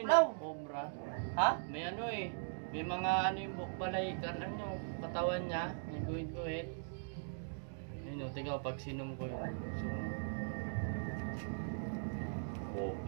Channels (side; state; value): left; silent; digital silence